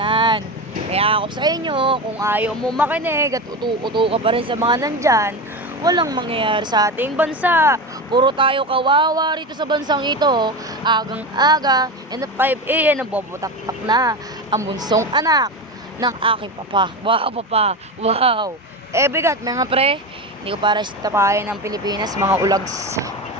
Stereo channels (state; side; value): normal; both; correlation 0.21